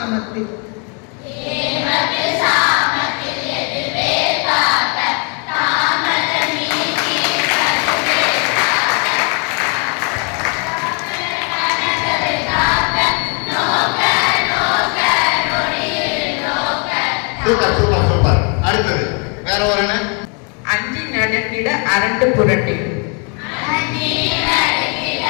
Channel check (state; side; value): quieter; right; 36.9 dB